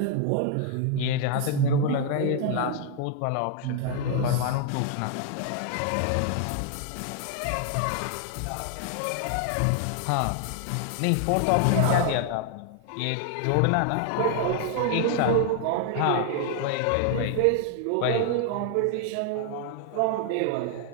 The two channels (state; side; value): different; both; correlation 0.00